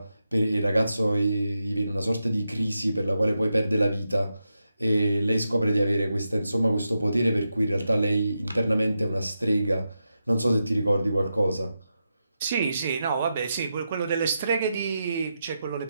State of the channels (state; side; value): inverted; both; correlation -0.88